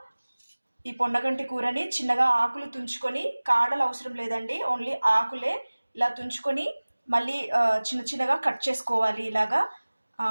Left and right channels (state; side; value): inverted; both; correlation -1.00